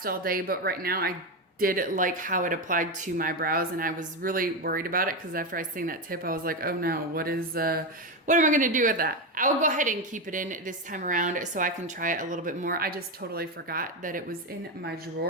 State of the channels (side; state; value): both; normal; correlation 0.12